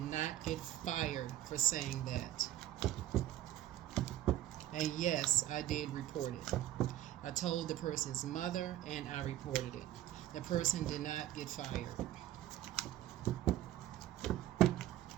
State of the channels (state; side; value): quieter; left; 13.3 dB